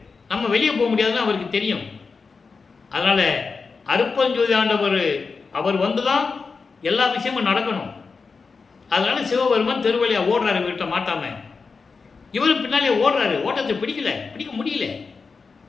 நம்ம வெளியே போக முடியாதுன்னு அவருக்கு தெரியும். அதனால அருப்பஞ்சோதி ஆண்டவர் அவர் வந்துதான் எல்லா விஷயமும் நடக்கணும். அதனால சிவபெருமான் தெருவழியா ஓடுறாரு வீட்டை மாட்டாம. இவரும் பின்னாலே ஓடுறாரு. ஓட்டத்தை பிடிக்க முடியல.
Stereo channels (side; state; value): right; quieter; 4.7 dB